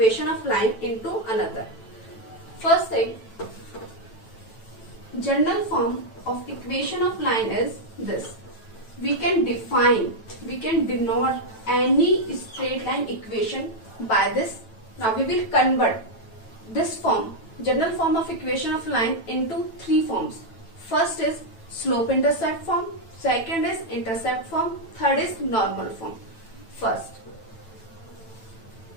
of line into another. First thing, general form of equation of line is this. We can denote any straight line equation by this. Now we will convert this form, general form of equation of line, into three forms. First is slope intercept form, second is intercept form, third is normal form. First,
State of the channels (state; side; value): late; right; 9.0 ms